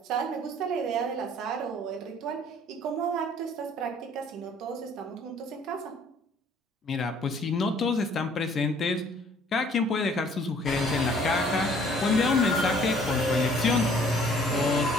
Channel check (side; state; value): both; normal; correlation 0.58